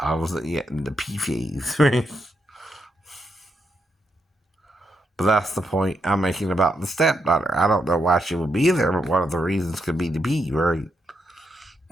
wasn't yet in the pee phase, right? But that's the point I'm making about the stepdaughter. I don't know why she would be there, but one of the reasons could be to pee, right?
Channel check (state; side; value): normal; both; correlation 0.81